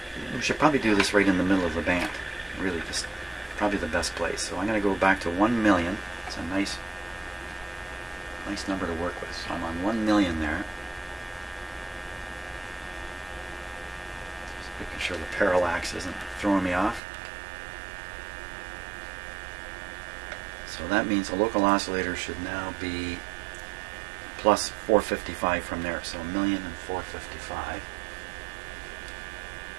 we should probably do this right in the middle of the band. Really, just probably the best place. So I'm going to go back to 1 million. It's a nice number to work with. So I'm on 1 million there. Just making sure the parallax isn't throwing me off. So that means the local oscillator should now be plus 455 from there. So 1,000,455.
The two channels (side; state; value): left; drops out; at 17.0 s